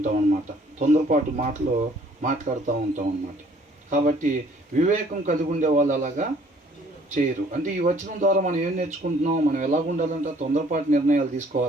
అన్నమాట. తొందరపాటు మాటలు మాట్లాడుతూ ఉంటాం అన్నమాట. కాబట్టి వివేకం కలిగి ఉండే వాళ్ళు అలాగా చేయరు. అంటే ఈ వచనం ద్వారా మనం ఏం నేర్చుకుంటున్నాం? మనం ఎలాగ ఉండాలంటే తొందరపాటు నిర్ణయాలు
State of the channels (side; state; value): both; normal; correlation 0.59